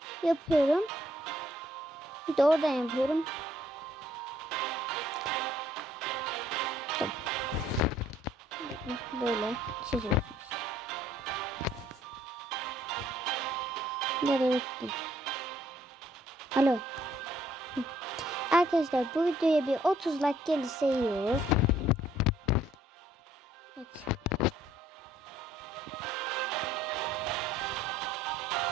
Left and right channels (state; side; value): normal; both; correlation 0.64